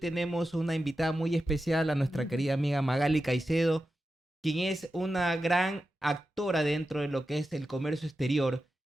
una invitada muy especial, a nuestra querida amiga Magali Caicedo, quien es una gran actora dentro de lo que es el comercio exterior.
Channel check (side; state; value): both; normal; correlation 0.91